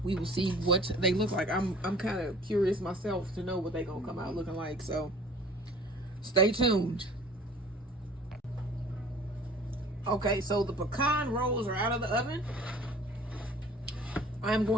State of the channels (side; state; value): both; normal; correlation 0.48